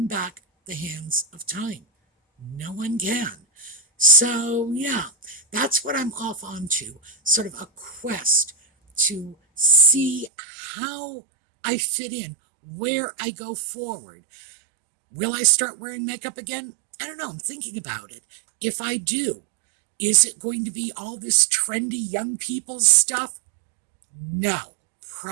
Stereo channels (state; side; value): drops out; left; at 10.3 s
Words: back the hands of time. No one can. So, yeah, that's what I'm off onto, sort of a quest to see how I fit in, where I go forward. Will I start wearing makeup again? I don't know. I'm thinking about it. If I do, is it going to be all this trendy young people's stuff? No,